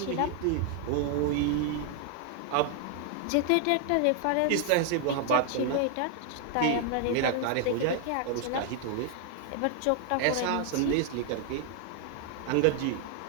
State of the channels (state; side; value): different; both; correlation 0.00